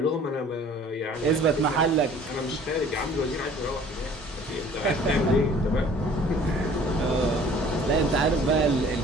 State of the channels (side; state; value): both; normal; correlation 0.51